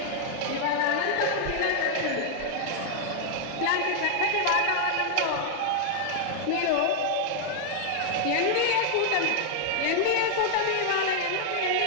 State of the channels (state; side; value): different; both; correlation 0.00